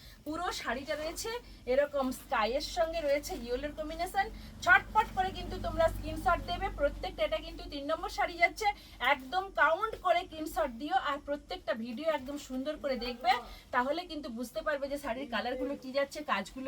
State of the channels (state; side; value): identical; both; correlation 1.00